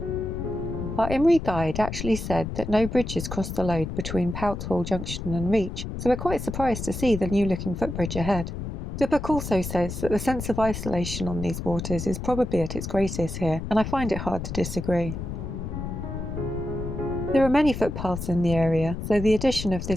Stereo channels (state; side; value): noise; left; rumble, 6 dB below the sound